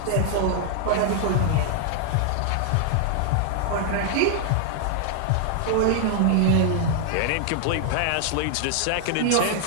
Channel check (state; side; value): different; both; correlation 0.00